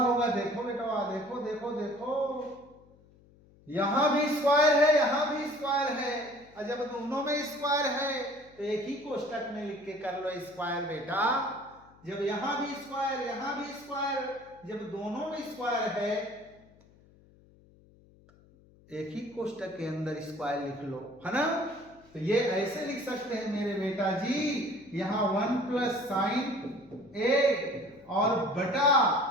होगा, देखो बेटा, देखो देखो देखो, यहां भी स्क्वायर है, यहां भी स्क्वायर है, और जब दोनों में स्क्वायर है तो एक ही कोष्टक में लिख के कर लो स्क्वायर बेटा। जब यहां भी स्क्वायर, यहां भी स्क्वायर, जब दोनों में स्क्वायर है एक ही कोष्टक के अंदर स्क्वायर लिख लो, है ना। तो ये ऐसे लिख सकते हैं मेरे बेटा जी, यहां 1 प्लस साइन ए और बटा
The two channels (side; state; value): left; noise; hum, 27 dB below the sound